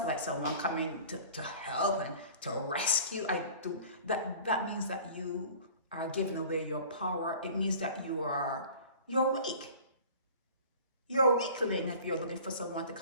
like someone coming to help and to rescue. That means that you are giving away your power. It means that you're weak. You're a weakling if you're looking for someone to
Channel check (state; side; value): inverted; both; correlation -0.44